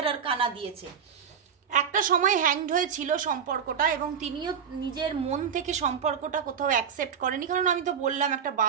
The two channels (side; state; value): left; quieter; 7.4 dB